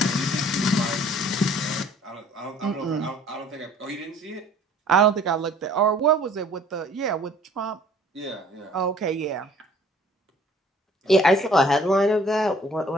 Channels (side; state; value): both; normal; correlation 0.54